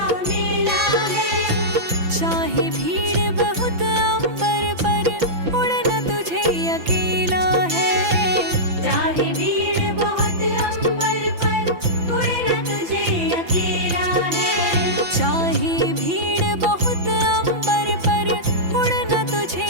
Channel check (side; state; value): left; late; 5.9 ms